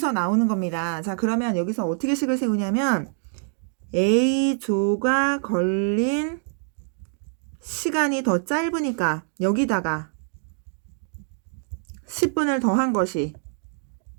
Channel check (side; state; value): left; silent; 62 dB below the other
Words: 나오는 겁니다. 자, 그러면 여기서 어떻게 식을 세우냐면 A조가 걸린 시간이 더 짧으니까 여기다가 10분을 더한 것이